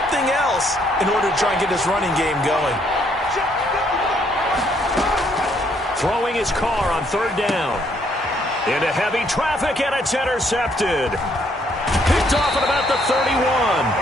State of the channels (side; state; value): both; normal; correlation 0.69